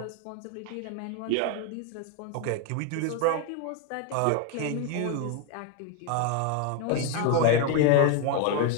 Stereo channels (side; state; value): both; different; correlation 0.01